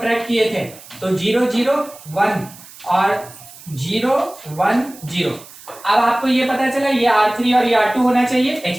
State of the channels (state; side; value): noise; right; hiss, 19 dB below the sound